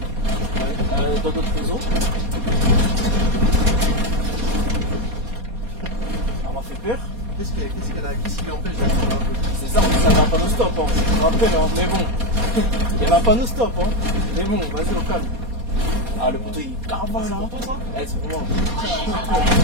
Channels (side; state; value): left; late; 4.2 ms